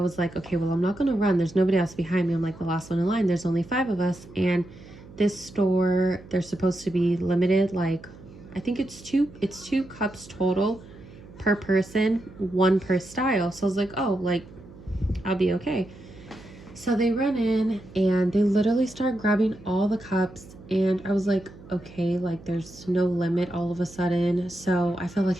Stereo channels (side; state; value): right; noise; hum, 19 dB below the sound